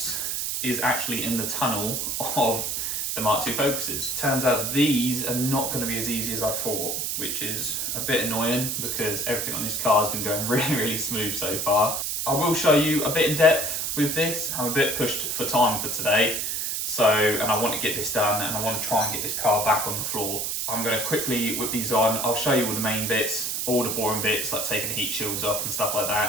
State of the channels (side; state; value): right; noise; hiss, 1 dB below the sound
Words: is actually in the tunnel of the Mark II Focuses. Turns out these are not going to be as easy as I thought, which is a bit annoying because everything on this car has been going really smooth so far. I will show you a bit in depth with this. I'm a bit pushed for time for today, and I want to get this done and I want to try and get this car back on the floor. I'm going to quickly whip these on. I'll show you all the main bits, all the boring bits like taking the heat shields off and stuff like